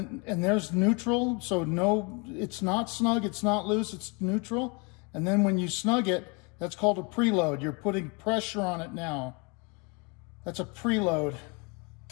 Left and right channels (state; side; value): quieter; right; 31.3 dB